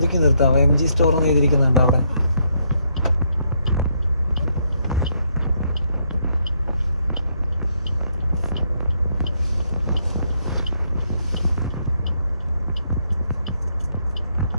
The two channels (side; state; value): both; inverted; correlation -0.75